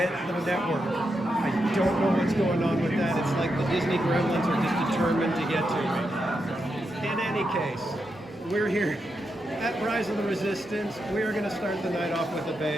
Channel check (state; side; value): normal; both; correlation 0.85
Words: the network. I don't know what's going on with that. It's like the Disney gremlins are just determined to get to me. In any case, we're here at Rise of the Resistance. We are going to start the night off with a